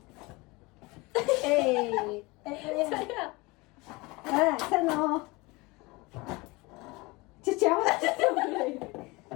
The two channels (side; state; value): right; quieter; 24.1 dB